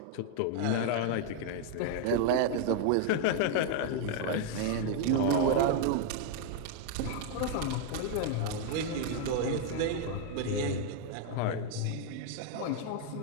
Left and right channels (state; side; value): different; both; correlation 0.00